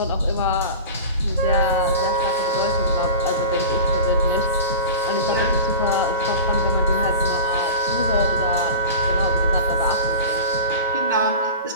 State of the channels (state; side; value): inverted; both; correlation -0.31